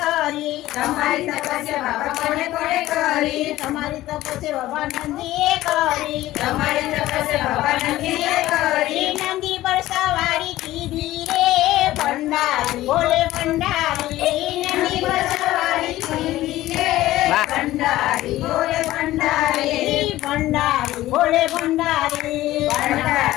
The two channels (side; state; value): right; quieter; 15.7 dB